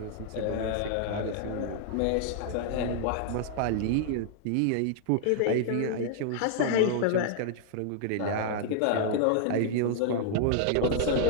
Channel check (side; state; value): both; different; correlation -0.01